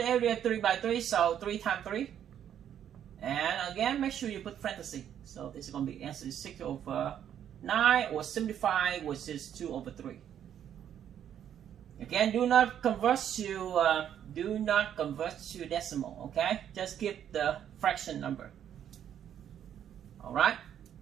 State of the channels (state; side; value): quieter; left; 9.7 dB